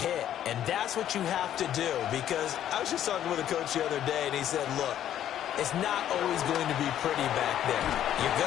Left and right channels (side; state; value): right; quieter; 11.0 dB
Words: And that's what you have to do, because I was just talking with a coach the other day, and he said, look, it's not always going to be pretty back there. You're